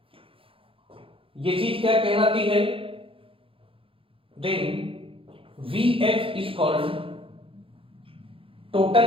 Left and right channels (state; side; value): late; left; 0.26 ms